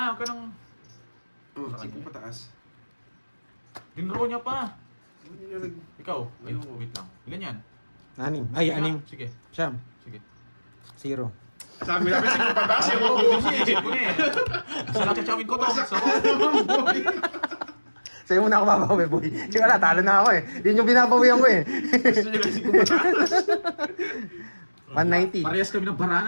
huwag ka nang... Oh, Sa 5 kanya. pataas. Dinro niya pa. Ano nilalag? Ikaw, ay, Ayoko. wait lang. Ilan yan? 6. Ay, Sige 6. nga. Sige, Siyam. sige. 0. Sabi namin 5 pataas yung Oo, kukunin. isip ko na eh. Sa nakachawin ko to. So, Sa'yo muna ako babawi, boy. Kasi wala, talo na ako eh. Yun yung binabawian ko eh. Gusto niya lang 5 pataas. 190. parehas kami ng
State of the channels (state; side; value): inverted; both; correlation -1.00